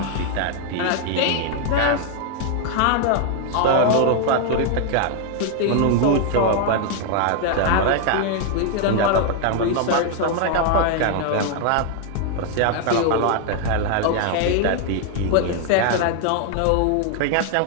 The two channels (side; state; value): both; different; correlation 0.01